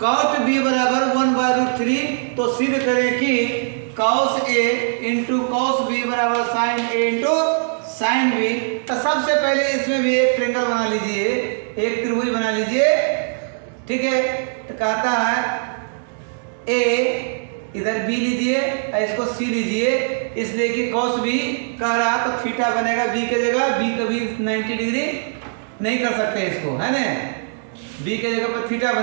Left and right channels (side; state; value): left; silent; digital silence